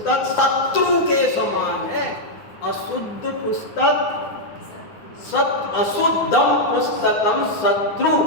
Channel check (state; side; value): late; right; 9.5 ms